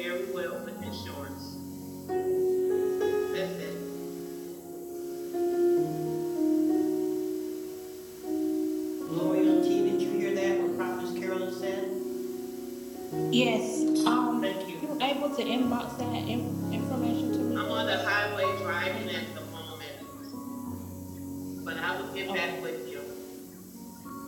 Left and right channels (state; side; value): identical; both; correlation 1.00